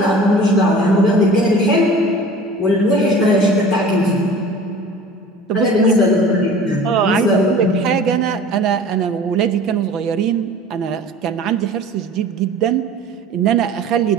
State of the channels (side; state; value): both; normal; correlation 0.43